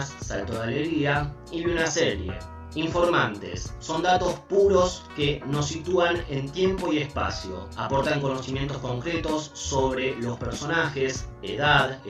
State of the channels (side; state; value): both; identical; correlation 1.00